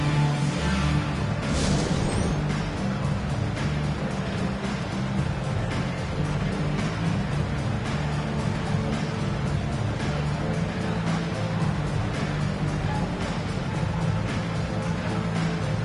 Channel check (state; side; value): identical; both; correlation 1.00